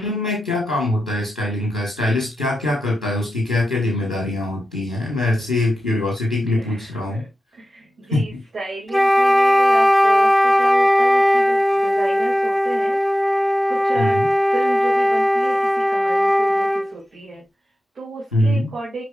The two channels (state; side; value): normal; both; correlation 0.93